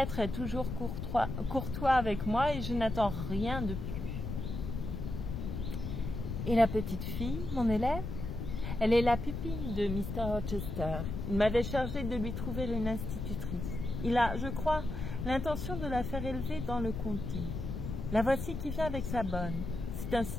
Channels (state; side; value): noise; left; rumble, 5 dB below the sound